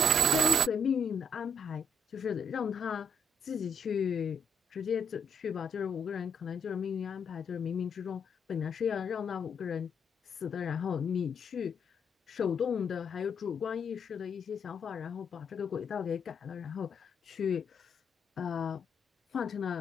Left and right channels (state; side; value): normal; both; correlation 0.73